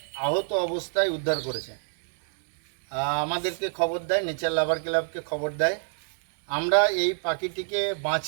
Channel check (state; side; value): silent; left; digital silence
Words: আহত অবস্থায় উদ্ধার করেছে। আমাদেরকে খবর দেয়, নেচার লাভার ক্লাবকে খবর দেয়। আমরা এই পাখিটিকে